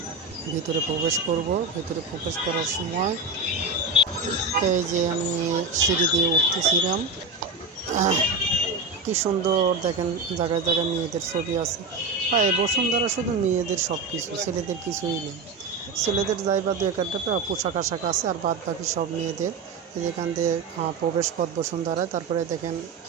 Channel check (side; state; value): left; quieter; 3.8 dB